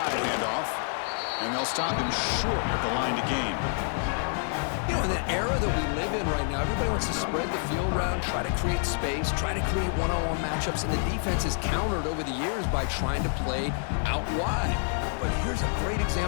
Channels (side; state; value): right; silent; 59 dB below the other